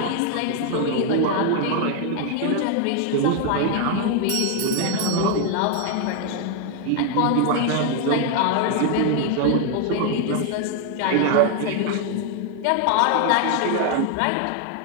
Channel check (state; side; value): different; both; correlation 0.00